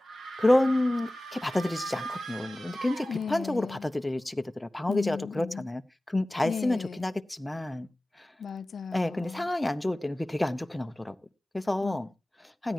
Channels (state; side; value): normal; both; correlation 0.97